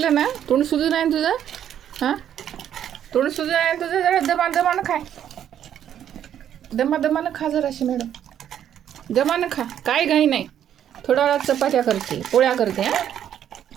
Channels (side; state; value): left; quieter; 10.0 dB